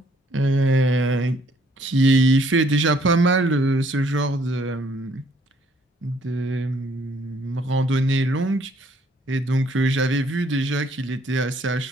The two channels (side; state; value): both; normal; correlation 0.64